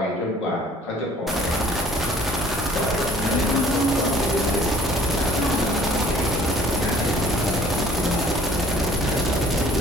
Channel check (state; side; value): normal; both; correlation 0.55